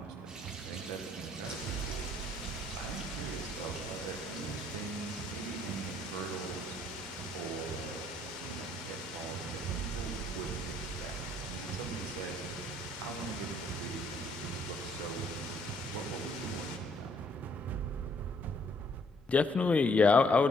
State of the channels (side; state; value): both; normal; correlation 0.65